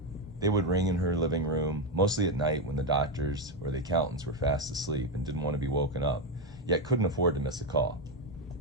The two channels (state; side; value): normal; both; correlation 0.08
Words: They would ring in her living room, mostly at night when the doctors or the accountants were fast asleep and didn't want to be woken up, yet couldn't afford to miss a call.